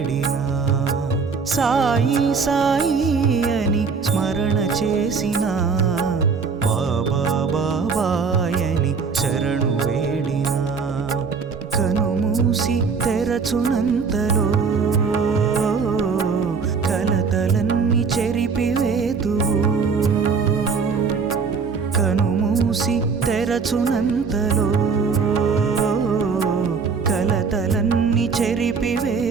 సాయి సాయి అని స్మరణ చేసిన, బాబా బాబాయని శరణు వేడినా. కనుమూసి తెరచునంతలో కలతలన్నీ చెరిపివేతువు, కనుమూసి తెరచునంతలో కలతలన్నీ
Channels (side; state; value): left; quieter; 5.3 dB